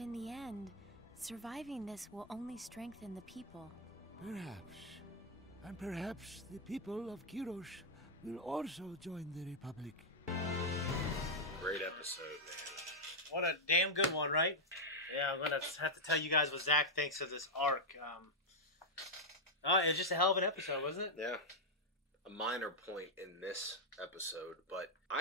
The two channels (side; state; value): both; normal; correlation -0.02